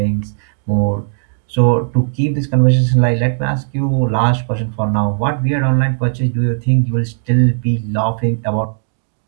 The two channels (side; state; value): left; silent; 69 dB below the other